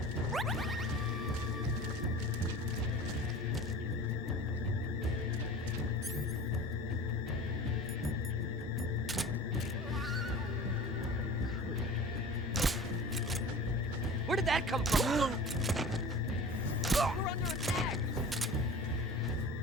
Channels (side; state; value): both; normal; correlation 0.39